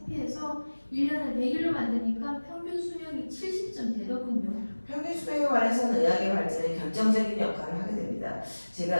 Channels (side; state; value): both; inverted; correlation -1.00